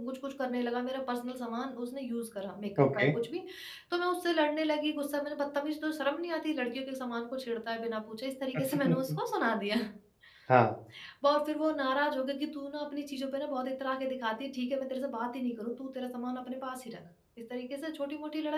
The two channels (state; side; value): identical; both; correlation 1.00